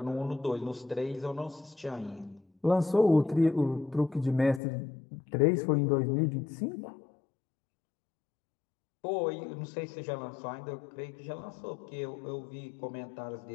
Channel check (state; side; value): drops out; right; at 4.6 s